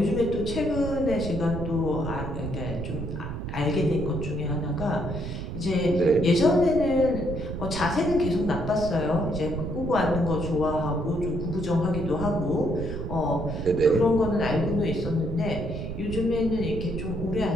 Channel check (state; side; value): noise; right; rumble, 6 dB below the sound